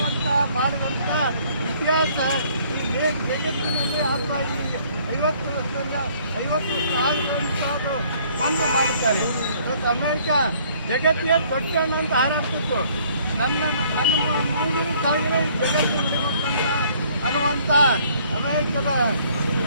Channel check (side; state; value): both; inverted; correlation -0.60